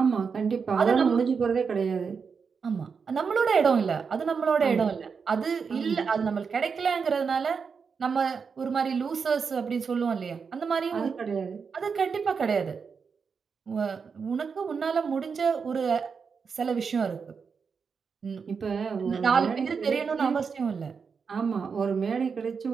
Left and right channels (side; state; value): left; quieter; 5.7 dB